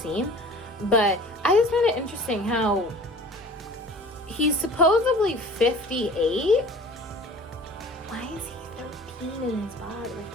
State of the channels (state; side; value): normal; both; correlation 0.44